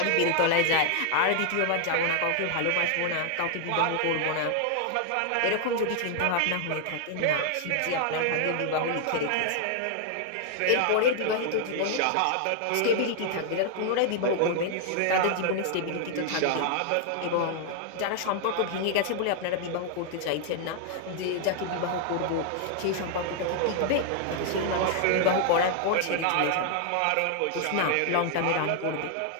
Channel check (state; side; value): different; both; correlation 0.00